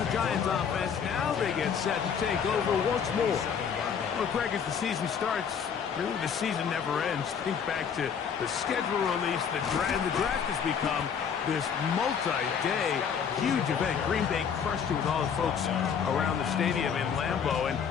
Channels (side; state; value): right; quieter; 7.2 dB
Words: Giants offense. Now they get set to take over once more. Well, Greg, as the season starts, really the season never ends. Think back to the schedule release. The draft has become this multi-day huge event. Green Bay crushed it with all the folks around the stadium in Lambeau, and